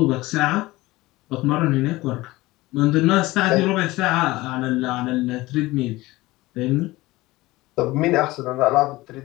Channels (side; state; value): right; quieter; 19.4 dB